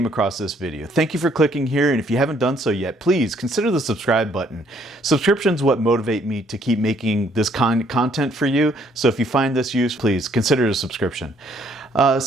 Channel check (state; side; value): normal; both; correlation 0.65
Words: across this video. Thank you for clicking here, and if you haven't done so yet, please consider the subscribe button. Subscriptions what motivate me to keep making this content for you. So if you find this use, please consider a subscription.